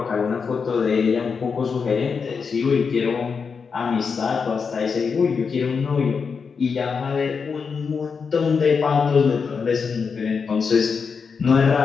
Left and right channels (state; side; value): quieter; right; 5.6 dB